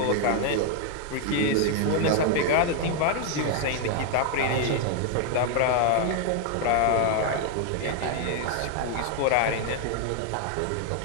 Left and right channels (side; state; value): both; different; correlation 0.01